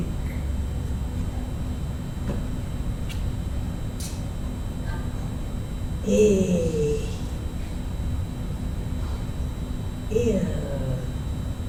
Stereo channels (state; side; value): identical; both; correlation 1.00